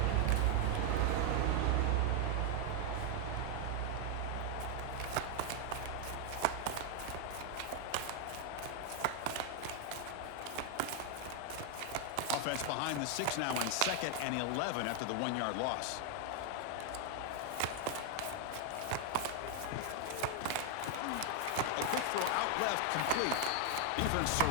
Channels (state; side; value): different; both; correlation 0.00